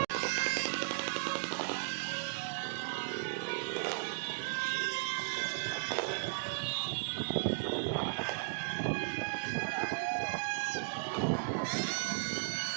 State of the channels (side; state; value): left; silent; digital silence